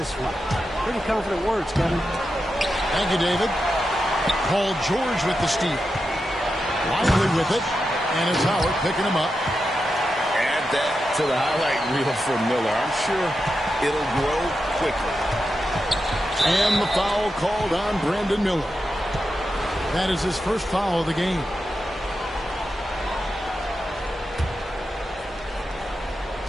one. Pretty confident words, Kevin. Thank you, David. Paul George with the steal. Lively with it. And it's Howard picking him up. Add that to the highlight reel for Miller. I'm sure it'll grow quickly. And the foul called on Brandon Miller. That is his first foul of the game.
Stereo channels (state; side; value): normal; both; correlation 0.89